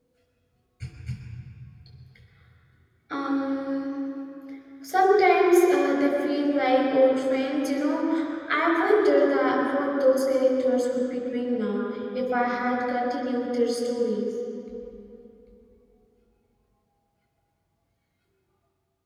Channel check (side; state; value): both; identical; correlation 1.00